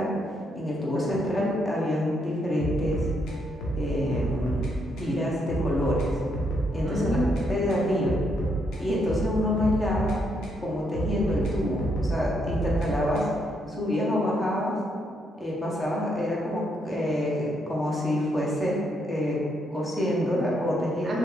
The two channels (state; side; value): normal; both; correlation 0.76